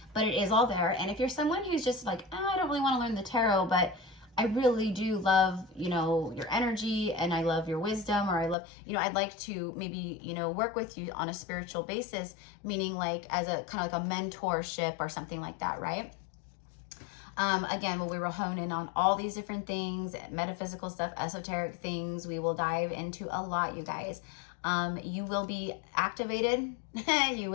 But it is all there. And if you're someone who's just like, oh, I don't really want to learn the tarot, but I really do love, you know, your energy, and I love your wisdom, or I love, you know, I'd like to maybe, you know, work with you on a spiritual basis, meaning like as a kind of like a mentorship or something like that, right? Again, we will hone in on all these different things, metaphysical stuff, esoteric things. We will dive into a lot, you guys. You will be activated. You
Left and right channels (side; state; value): right; drops out; at 8.6 s